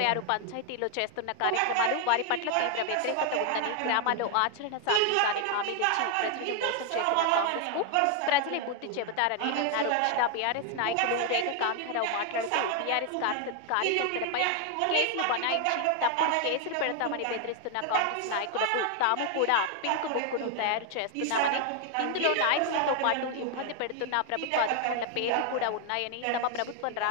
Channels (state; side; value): different; both; correlation 0.00